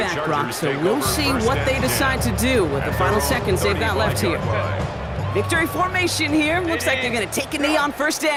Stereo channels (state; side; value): identical; both; correlation 1.00